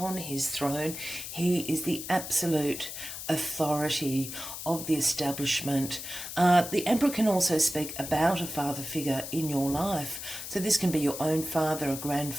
his throne. He is the absolute authority, of the establishment. The Emperor can also speak about a father figure in your life. So this can be your own father, a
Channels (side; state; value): left; noise; hiss, 8 dB below the sound